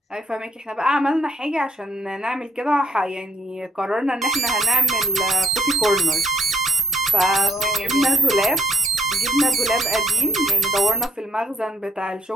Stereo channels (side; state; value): both; normal; correlation 0.75